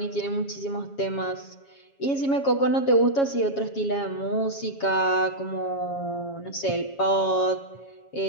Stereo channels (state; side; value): late; right; 7.3 ms